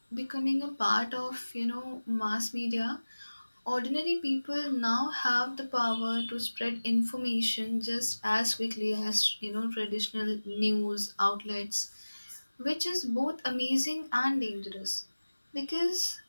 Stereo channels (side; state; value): both; inverted; correlation -1.00